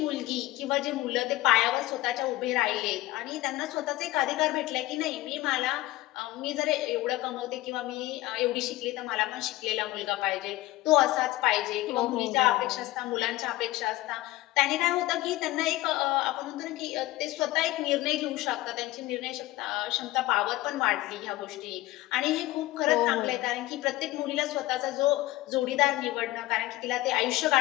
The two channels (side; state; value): right; quieter; 17.6 dB